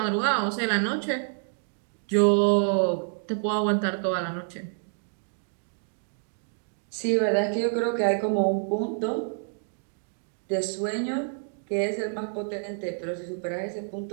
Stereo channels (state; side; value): silent; left; digital silence